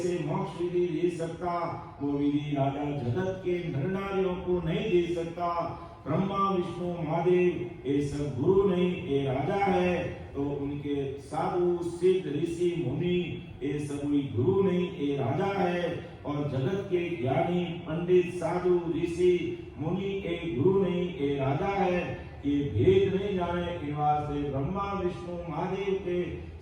मोक्ष विधि दे सकता वो विधि राजा जगत के नर नारियों को नहीं दे सकता। ब्रह्मा विष्णु महादेव ये सब गुरु नहीं ये राजा है तो उनके साधु सिद्ध ऋषि मुनि ये सब गुरु नहीं ये राजा है। और जगत के ज्ञानी पंडित साधु ऋषि मुनि ये गुरु नहीं ये राजा है। ये भेद नहीं जाने के वास्ते ब्रह्मा विष्णु महादेव के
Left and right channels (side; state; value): both; identical; correlation 1.00